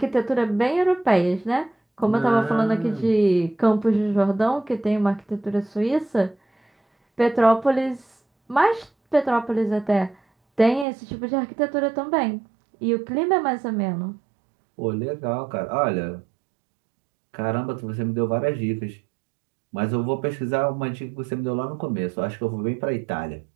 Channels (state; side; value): drops out; left; at 10.9 s